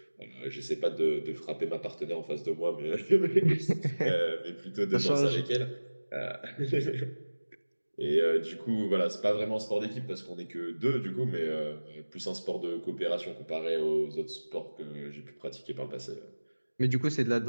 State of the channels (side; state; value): both; inverted; correlation -1.00